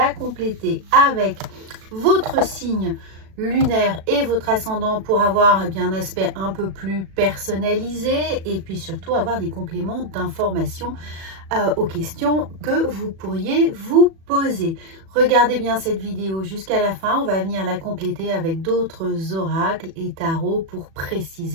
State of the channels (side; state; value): left; late; 37 ms